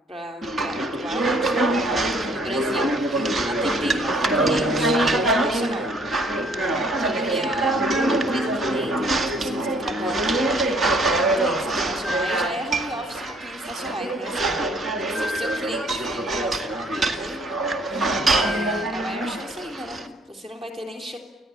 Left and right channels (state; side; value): normal; both; correlation 0.61